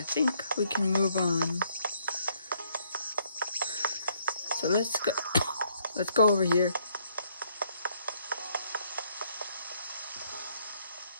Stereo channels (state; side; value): inverted; both; correlation -0.69